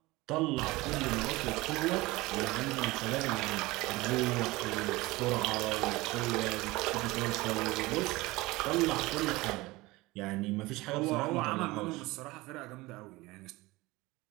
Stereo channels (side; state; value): left; quieter; 20.9 dB